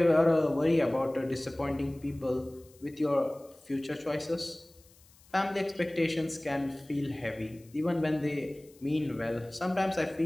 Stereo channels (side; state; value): left; noise; hiss, 28 dB below the sound